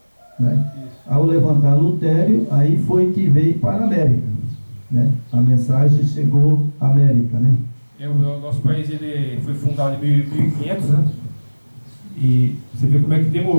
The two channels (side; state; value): both; inverted; correlation -1.00